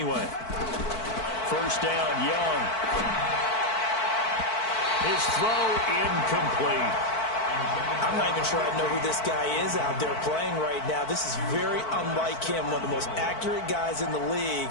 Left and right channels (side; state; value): right; late; 4.5 ms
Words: First down, Young. His throw incomplete. I'm not even sure I know who this guy is out there playing right now. This is very unlike him, one of the most accurate guys in the league.